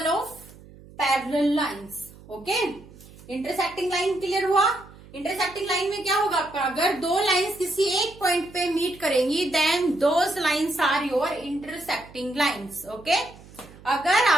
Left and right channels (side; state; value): right; noise; hum, 21 dB below the sound